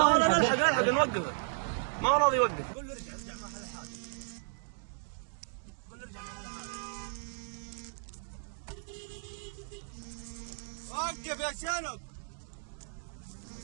نلحق نوقفه. ما هو راضي يوقف. قول له ارجع ما حل حاجة. قول له ارجع ما حل حاجة. وقف يا شنب.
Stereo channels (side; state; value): left; silent; digital silence